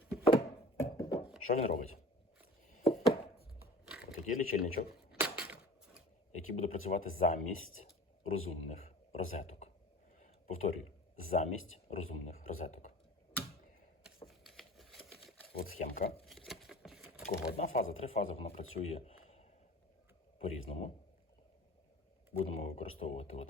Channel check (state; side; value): normal; both; correlation 0.41